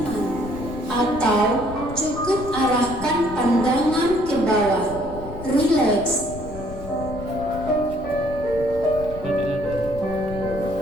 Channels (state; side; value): noise; left; rumble, 12 dB below the sound